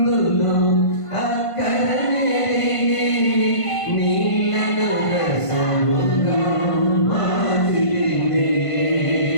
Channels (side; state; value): right; late; 1.5 ms